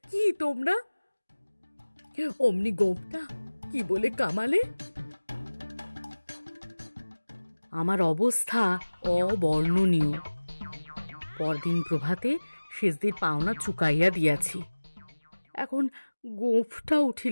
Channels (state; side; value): inverted; both; correlation -1.00